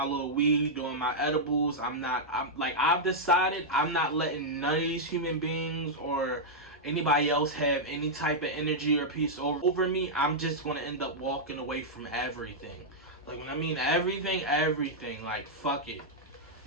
little weed, doing my edibles. I've decided I'm not letting none of these human beings or anybody else have any type of energy or peace over me. I'm just gonna end up walking away from everything. Like, when I mean everything, like, fuck it.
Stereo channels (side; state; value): both; normal; correlation -0.06